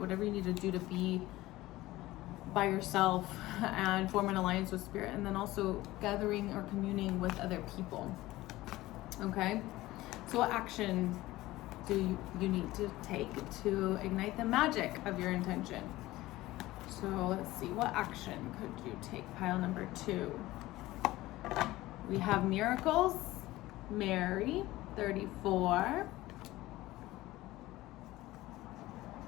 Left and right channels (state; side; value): quieter; right; 17.6 dB